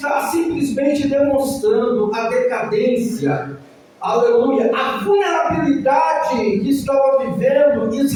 simplesmente demonstrando a decadência, aleluia, a vulnerabilidade que estava vivendo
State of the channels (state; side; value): identical; both; correlation 1.00